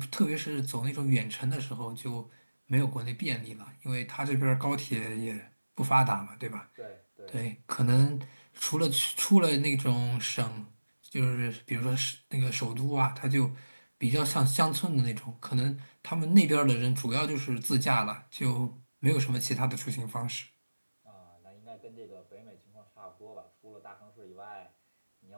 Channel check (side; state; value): both; inverted; correlation -1.00